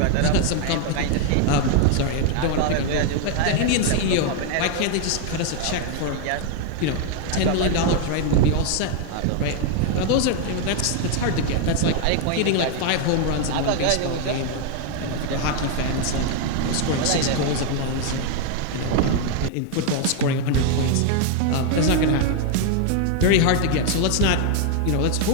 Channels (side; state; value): both; different; correlation 0.00